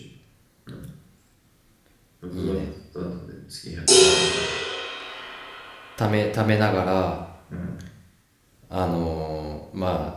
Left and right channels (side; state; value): both; identical; correlation 1.00